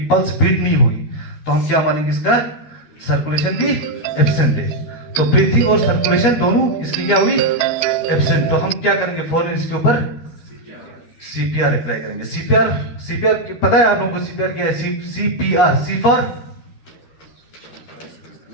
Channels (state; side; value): late; right; 13 ms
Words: पल्स बीट नहीं हुई तो हम क्या मानेंगे? इसका सर्कुलेशन भी एब्सेंट है। तो ब्रीथिंग और सर्कुलेशन दोनों इसकी क्या हुई? एब्सेंट। तो हम क्या करेंगे? फौरन इसके ऊपर CPR अप्लाई करेंगे। CPR पता है आप लोगों को CPR क्या है? CPR, C for